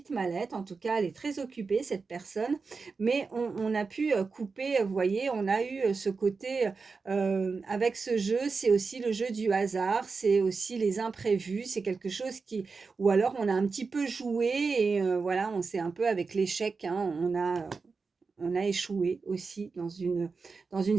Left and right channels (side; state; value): left; quieter; 4.6 dB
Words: mallette. En tout cas, elle est très occupée, cette personne, mais on a pu couper, vous voyez, on a eu ce côté, avec ce jeu, c'est aussi le jeu du hasard, c'est aussi les imprévus, c'est quelque chose qui, ou alors on a un petit peu joué, et voilà, on s'est un peu avec l'échec, hein, on a échoué aussi dans une